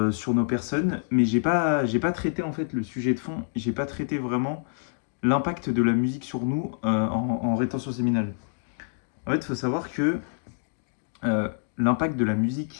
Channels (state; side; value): silent; right; digital silence